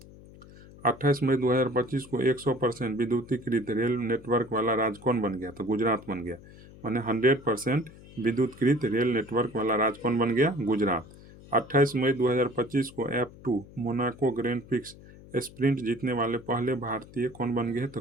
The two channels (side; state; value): left; noise; hum, 20 dB below the sound